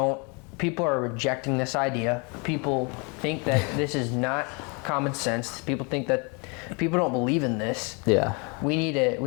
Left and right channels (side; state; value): right; quieter; 32.2 dB